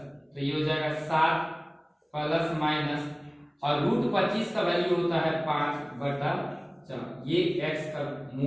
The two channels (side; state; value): both; identical; correlation 1.00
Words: तो ये हो जाएगा 7 प्लस माइनस और रूट 25 का वैल्यू होता है 5 बटा 4, ये x का